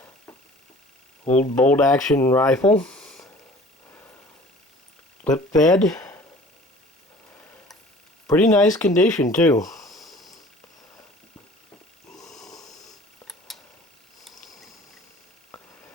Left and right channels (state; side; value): normal; both; correlation 0.47